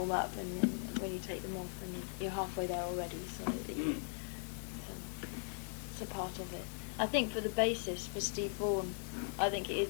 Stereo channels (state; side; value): silent; right; 52 dB below the other